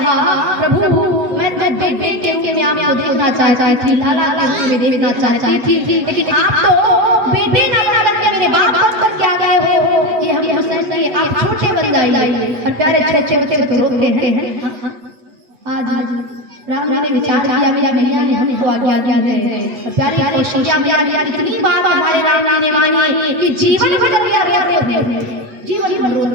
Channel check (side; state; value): left; late; 8.2 ms